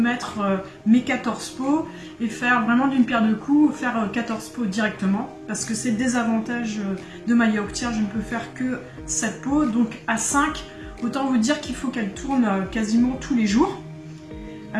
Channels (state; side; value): identical; both; correlation 1.00